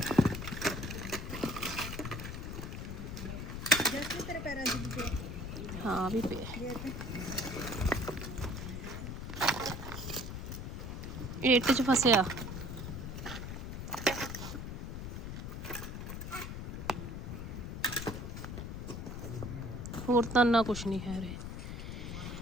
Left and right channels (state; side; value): noise; left; rumble, 6 dB below the sound